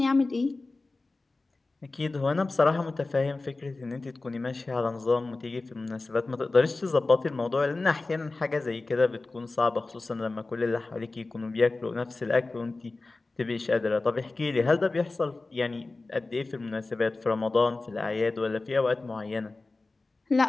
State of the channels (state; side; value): quieter; right; 3.4 dB